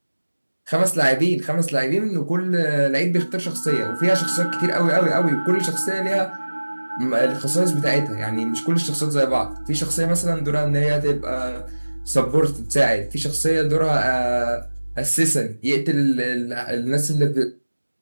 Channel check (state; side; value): inverted; both; correlation -1.00